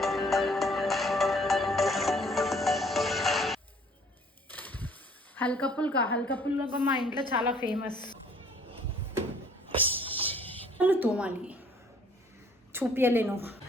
హల్కా పుల్కా మా ఇంట్లో చాలా ఫేమస్. తోమాలి, చూపించలేను.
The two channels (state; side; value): normal; both; correlation 0.58